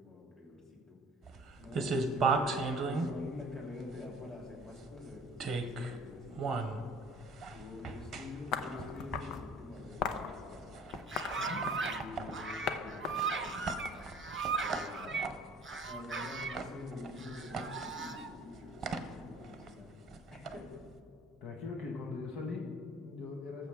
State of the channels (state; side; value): normal; both; correlation 0.50